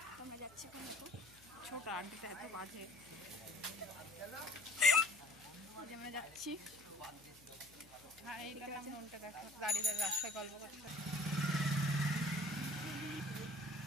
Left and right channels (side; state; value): left; noise; hum, 25 dB below the sound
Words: তো আমরা যাচ্ছি এখন। তো ছোট আন্টিটা এত বাজে। আমরা যাচ্ছি। হ্যাঁ এইটা মনটা দেখো, দাঁড়িয়ে রাস্তায় গল্প করছে।